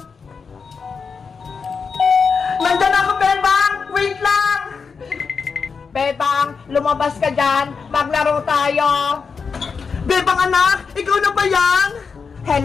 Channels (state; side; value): quieter; right; 5.4 dB